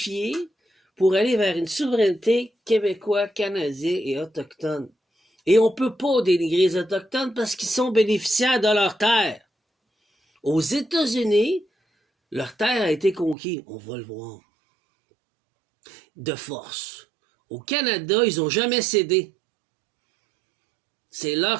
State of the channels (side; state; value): left; drops out; at 13.4 s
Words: pour aller vers une souveraineté québécoise, canadienne et autochtone. Et on ne peut pas dénigrer les Autochtones parce qu'ils sont bénéficiaires de leur terre. Aux États-Unis, leur terre a été conquise. On va le voir. De force. Au Canada, ils n'ont jamais cédé. C'est